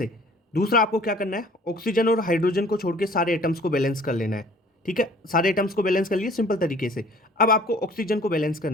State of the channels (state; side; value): normal; both; correlation 0.52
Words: दूसरा आपको क्या करना है, ऑक्सीजन और हाइड्रोजन को छोड़ के सारे एटम्स को बैलेंस कर लेना है। ठीक है, सारे एटम्स को बैलेंस कर लिए सिंपल तरीके से। अब आपको ऑक्सीजन को बैलेंस